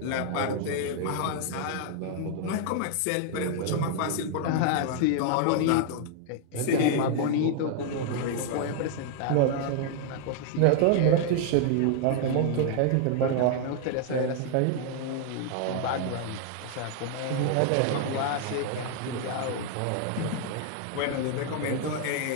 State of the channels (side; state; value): both; different; correlation 0.00